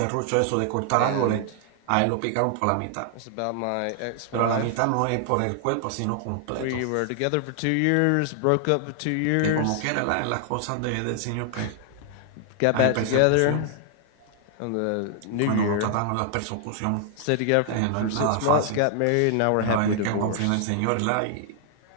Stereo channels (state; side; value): different; both; correlation 0.00